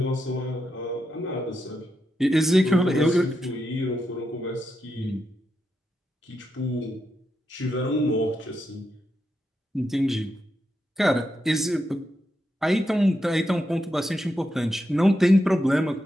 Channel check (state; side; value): normal; both; correlation 0.85